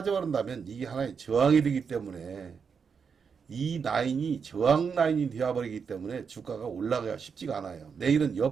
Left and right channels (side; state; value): left; quieter; 6.1 dB